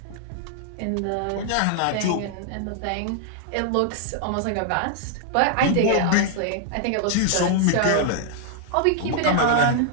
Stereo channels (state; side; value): different; both; correlation -0.01